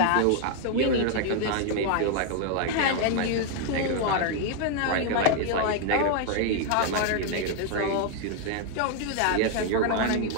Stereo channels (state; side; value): different; both; correlation 0.00